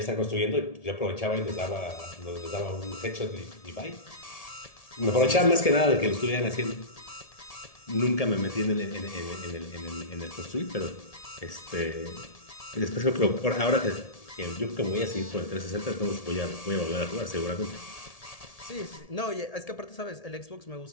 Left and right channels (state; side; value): late; right; 1.7 ms